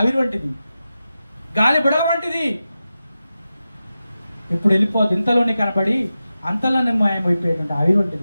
వంటిది, గాలి బుడగ వంటిది. ఇప్పుడు వెళ్ళిపోదు. ఇంతలోనే కనబడి అంతలోనే మాయమైపోయేటువంటి ఆవిరి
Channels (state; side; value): inverted; both; correlation -0.92